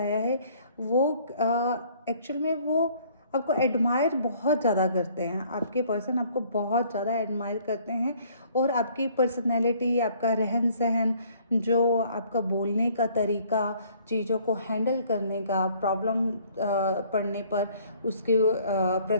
है। वो एक्चुअल में वो आपको एडमायर बहुत ज़्यादा करते हैं, आपके पर्सन आपको बहुत ज़्यादा एडमायर करते हैं। और आपकी पर्सनैलिटी, आपका रहन सहन, जो आपका बोलने का तरीका, चीज़ों को हैंडल करने का, प्रॉब्लम पड़ने पर उसके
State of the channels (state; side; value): inverted; both; correlation -0.59